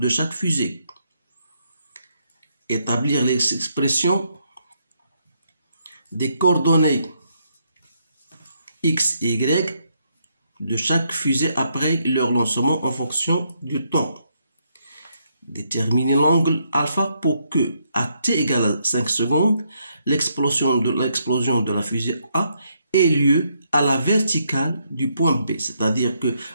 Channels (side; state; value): both; inverted; correlation -0.76